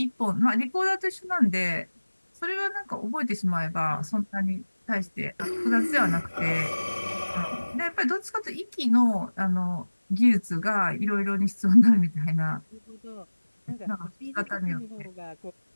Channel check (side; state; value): both; inverted; correlation -1.00